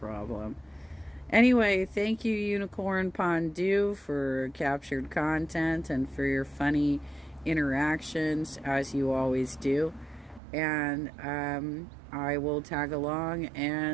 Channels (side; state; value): left; drops out; at 10.4 s